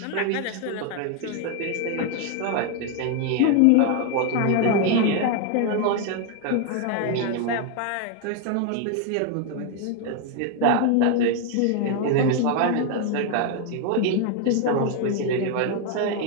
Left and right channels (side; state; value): both; different; correlation 0.01